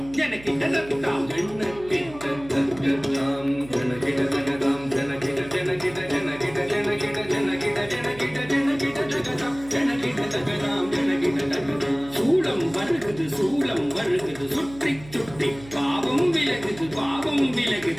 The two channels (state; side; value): noise; right; hum, 18 dB below the sound